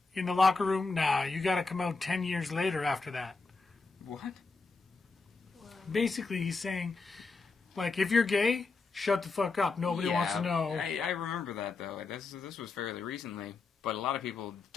In the locker room, nah, you got to come out 10 years later after that. What? Basically, he's saying, like, if you're gay, shut the fuck up. Nobody wants to know. I remember that, though. This was fairly recently, but a lot of people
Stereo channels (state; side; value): quieter; right; 4.1 dB